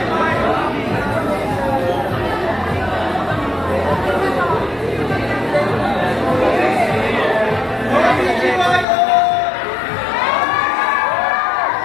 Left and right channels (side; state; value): right; drops out; at 8.8 s